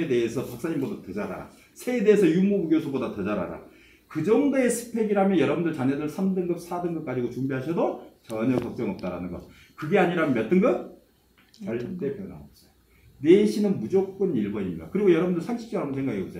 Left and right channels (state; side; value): identical; both; correlation 1.00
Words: 대해서 박사님보다 더 잘 알아. 새에 대해서 유무부 교수보다 더 잘 알아. 그 정도의 스펙이라면 여러분들 자녀들 3등급 4등급 가지고 준비하셔도 전혀 걱정 없다라는 거. 그게 아니라면 몇 등급? 절대 변함없어요. 내신은 무조건 1번입니다. 그리고 여러분들 상식적으로 한번 생각해